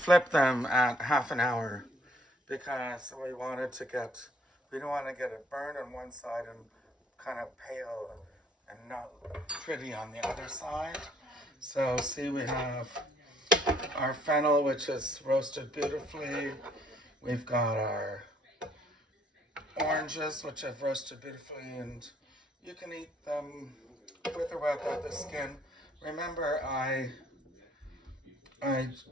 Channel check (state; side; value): normal; both; correlation 0.64